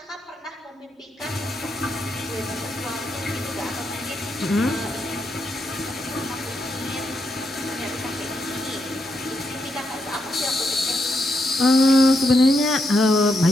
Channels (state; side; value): normal; both; correlation 0.81